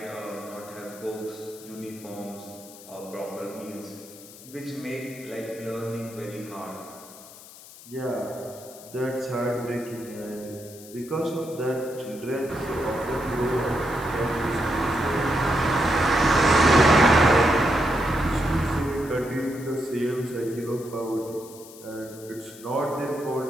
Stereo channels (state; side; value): noise; left; hiss, 18 dB below the sound